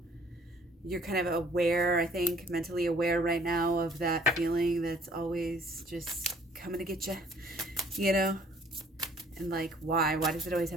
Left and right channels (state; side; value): normal; both; correlation 0.58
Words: You're kind of aware, I think, mentally aware right now of that feeling that's always just coming to get you, And like, why? Why does it always